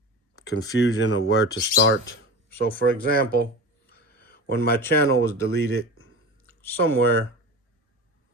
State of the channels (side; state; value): both; normal; correlation 0.30